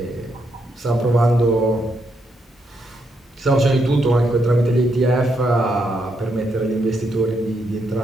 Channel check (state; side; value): normal; both; correlation 0.78